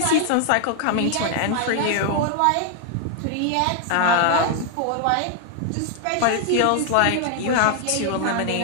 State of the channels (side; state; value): both; different; correlation 0.00